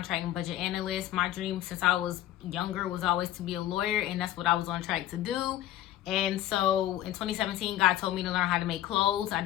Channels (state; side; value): quieter; right; 13.3 dB